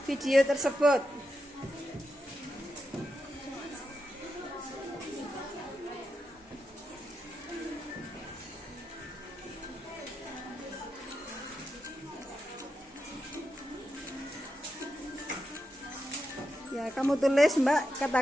video tersebut. Ya, kamu tulis Mbak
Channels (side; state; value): both; normal; correlation 0.87